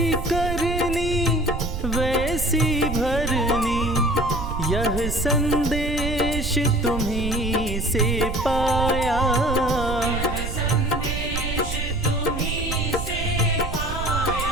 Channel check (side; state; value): right; noise; rumble, 4 dB below the sound